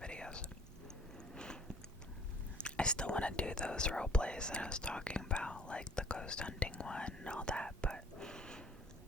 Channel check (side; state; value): both; normal; correlation 0.53